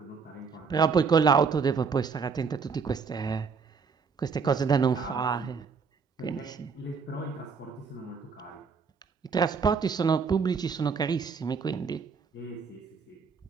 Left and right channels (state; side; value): quieter; left; 5.5 dB